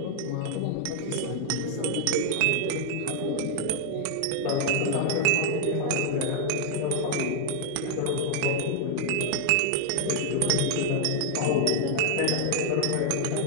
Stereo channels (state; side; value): different; both; correlation 0.00